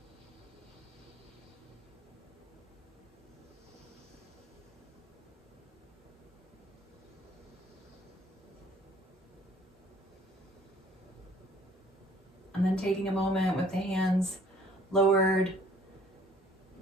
And then taking a moment with the hands lowered,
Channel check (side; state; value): both; normal; correlation 0.56